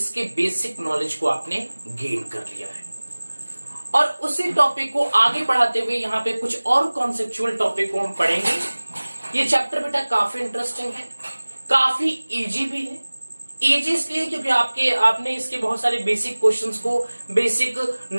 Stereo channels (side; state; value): both; inverted; correlation -1.00